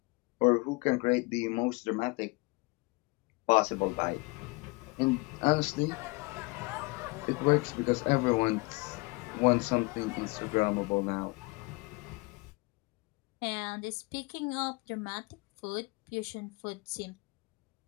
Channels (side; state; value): right; quieter; 26.5 dB